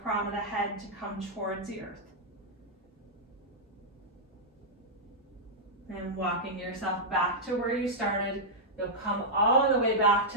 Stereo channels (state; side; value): normal; both; correlation -0.08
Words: crown of the head to come towards the earth. And walking yourself back to where you started, you'll come all the way back